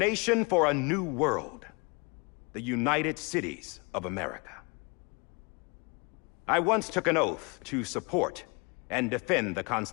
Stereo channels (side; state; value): right; quieter; 30.1 dB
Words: for a new world. The United Cities of America. I once took an oath to support and defend the